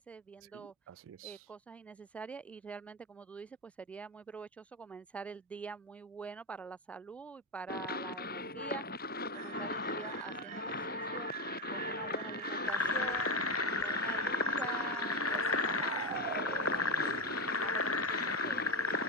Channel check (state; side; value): normal; both; correlation 0.13